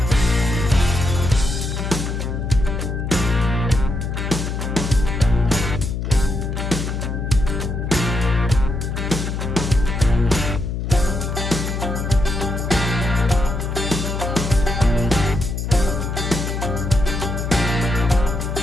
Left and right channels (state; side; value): noise; left; hum, 3 dB below the sound